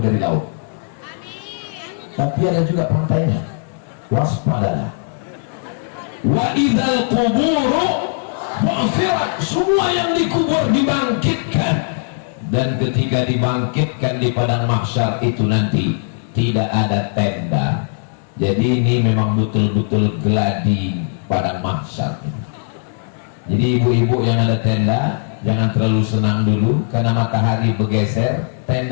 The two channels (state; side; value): silent; right; digital silence